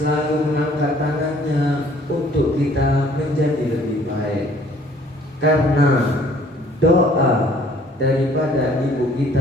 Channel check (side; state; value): both; normal; correlation 0.58